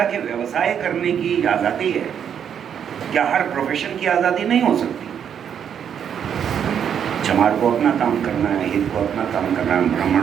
के व्यवसाय करने की आज़ादी है? क्या हर प्रोफेशन की आज़ादी नहीं हो सकती? चमार को अपना काम करना है, हित को अपना काम करना है, ब्राह्मण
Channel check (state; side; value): quieter; left; 8.3 dB